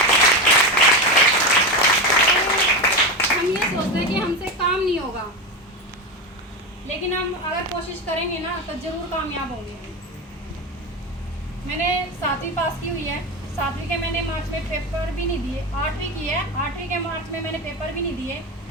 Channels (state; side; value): normal; both; correlation 0.18